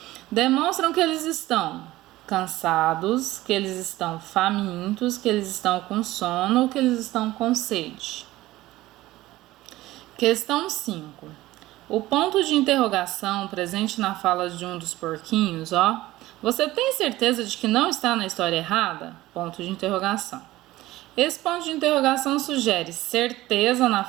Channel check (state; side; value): quieter; left; 17.0 dB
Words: Demonstram que eles estão cansados, que eles estão famintos, que eles estão com sono ou que eles estão com sede. Questão 5. O ponto de interrogação presente na fala de um dos porquinhos, ó. Você tem certeza de que não está na história errada? Ponto de interrogação. Esse ponto de interrogação sugere certeza na